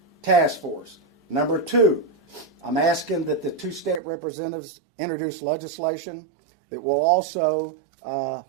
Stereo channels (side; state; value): left; drops out; at 4.0 s